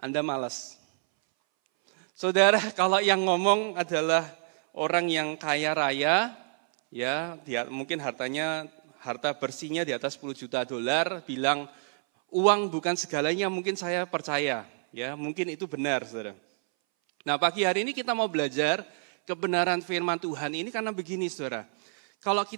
Anda malas. Saudara, kalau yang ngomong adalah orang yang kaya raya, ya, dia mungkin harta bersihnya di atas 10 juta dolar, bilang uang bukan segalanya, mungkin saya percaya, ya, mungkin itu benar, saudara. Nah, pagi hari ini kita mau belajar kebenaran firman Tuhan ini karena begini, saudara. Kalau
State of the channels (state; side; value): silent; left; 59 dB below the other